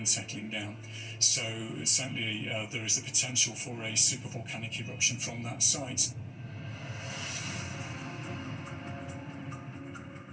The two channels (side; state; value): both; identical; correlation 1.00